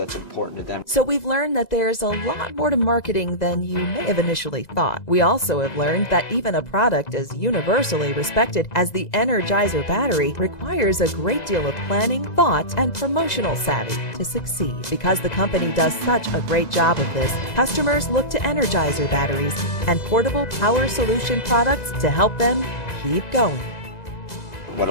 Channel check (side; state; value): right; late; 2.0 ms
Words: important to them. So we've learned that there's a lot more to marketing than you may have initially thought. We also have learned that even a product as universally respected as the Energizer battery requires a great deal of planning, thought, and promotional savvy to succeed. Because the company does such a great job of this, customers look to Energizer batteries and portable power solution products to help them keep going. What